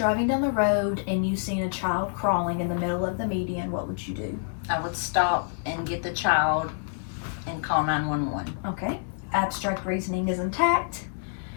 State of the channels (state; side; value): silent; right; digital silence